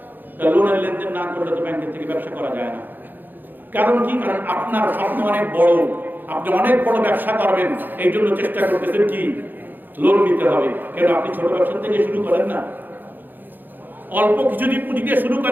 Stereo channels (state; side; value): late; left; 0.089 ms